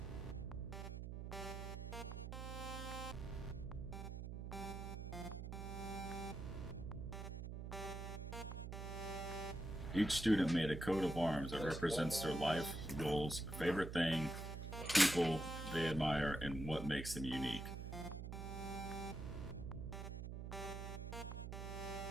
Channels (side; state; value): right; noise; hum, 6 dB below the sound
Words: Each student made a coat of arms that represents their life, goals, favorite thing, people they admire, and what makes them unique.